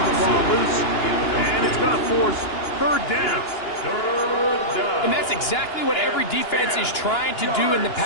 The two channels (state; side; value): late; right; 2.9 ms